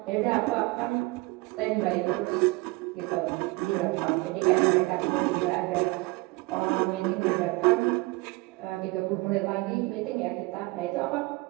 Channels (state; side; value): quieter; left; 23.9 dB